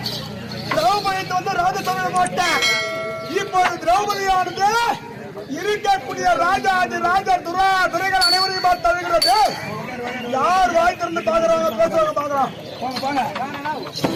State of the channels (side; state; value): both; identical; correlation 1.00